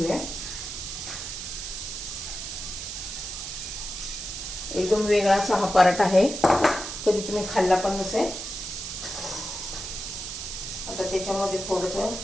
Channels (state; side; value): noise; right; hiss, 7 dB below the sound